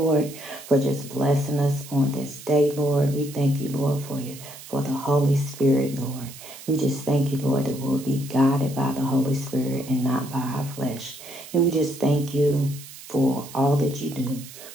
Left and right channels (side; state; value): right; noise; hiss, 16 dB below the sound